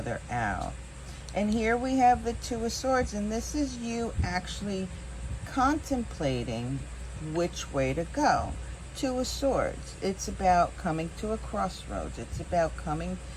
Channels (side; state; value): both; identical; correlation 1.00